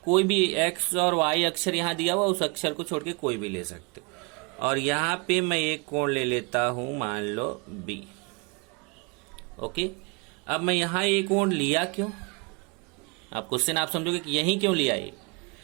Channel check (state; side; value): quieter; left; 29.7 dB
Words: कोई भी x और y अक्षर यहाँ दिया हुआ उस अक्षर को छोड़ के कोई भी ले सकते। और यहाँ पे मैं एक कोण ले लेता हूँ, मान लो B। ओके, अब मैं यहाँ एक कोण लिया क्यों, आप क्वेश्चन आप समझोगे कि यही क्यों लिया ये।